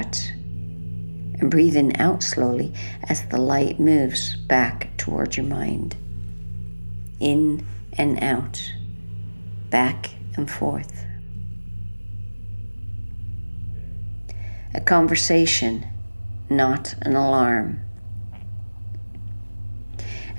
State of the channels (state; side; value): inverted; both; correlation -1.00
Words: and breathing out slowly as the light moves back towards your mind. In and out, back and forth. A conversation, not an alarm.